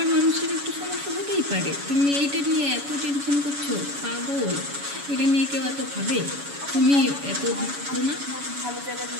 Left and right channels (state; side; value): late; left; 7.1 ms